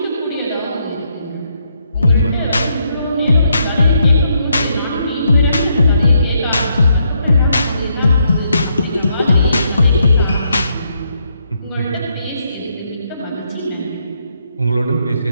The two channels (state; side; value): inverted; both; correlation -0.76